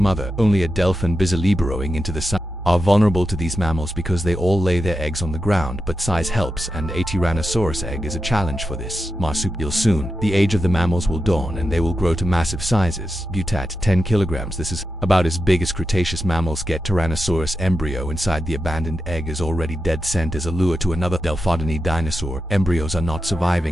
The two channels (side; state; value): both; normal; correlation 0.89